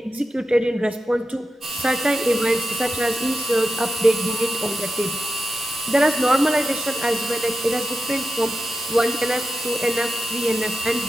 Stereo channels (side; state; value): both; normal; correlation 0.91